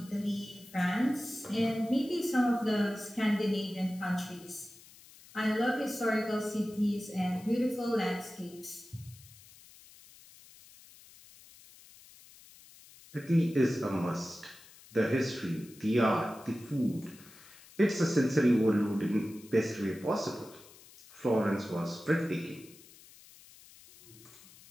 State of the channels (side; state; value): left; noise; hiss, 22 dB below the sound